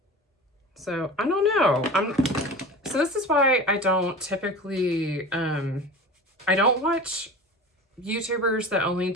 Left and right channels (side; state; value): both; normal; correlation 0.34